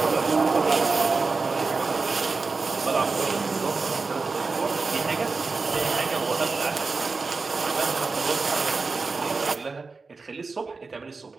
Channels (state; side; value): quieter; left; 4.2 dB